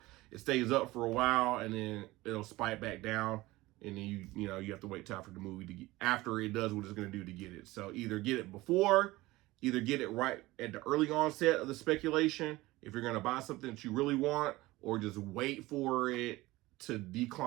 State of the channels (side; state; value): left; quieter; 19.3 dB